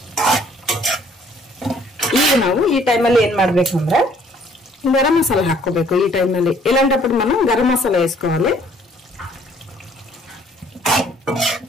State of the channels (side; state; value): both; normal; correlation 0.60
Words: ಈಗ ನಾವು ಈ ಟೈಮಲ್ಲಿ ಏನ್ ಮಾಡ್ಬೇಕಂದ್ರೆ ಗರಂ ಮಸಾಲ ಹಾಕೋಬೇಕು. ಈ ಟೈಮಲ್ಲಿ ಇಲ್ಲಾಂಟప్పుడు మనం ಗರಂ ಮಸಾಲ వేసుకోవాలి.